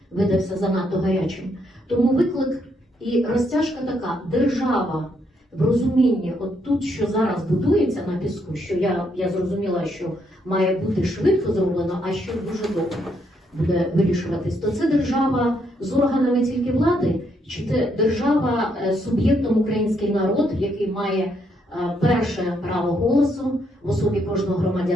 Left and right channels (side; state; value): both; normal; correlation 0.75